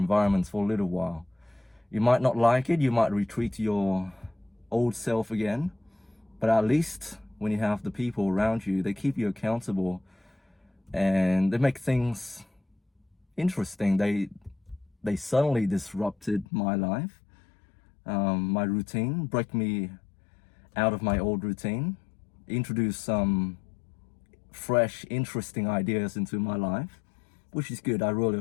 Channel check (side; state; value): right; drops out; at 16.4 s